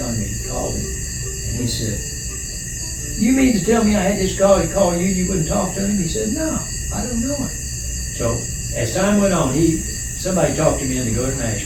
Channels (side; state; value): both; identical; correlation 1.00